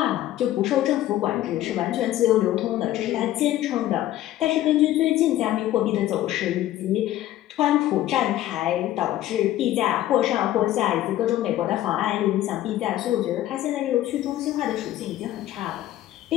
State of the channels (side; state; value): right; quieter; 13.8 dB